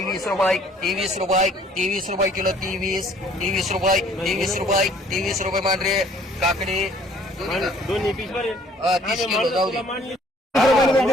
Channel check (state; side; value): normal; both; correlation 0.57